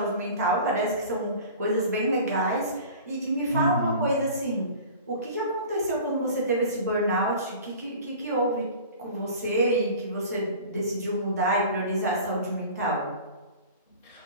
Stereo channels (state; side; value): inverted; both; correlation -0.40